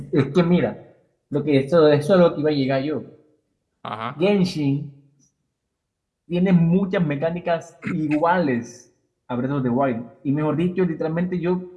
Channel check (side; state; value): both; identical; correlation 1.00